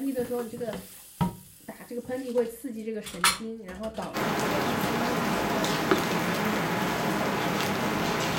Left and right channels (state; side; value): identical; both; correlation 1.00